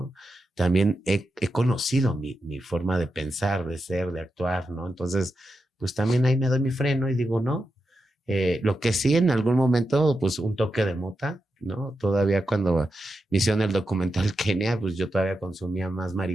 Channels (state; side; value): normal; both; correlation 0.88